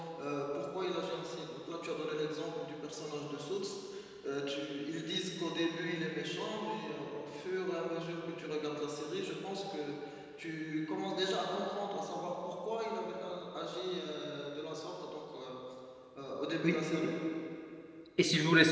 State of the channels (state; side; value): identical; both; correlation 1.00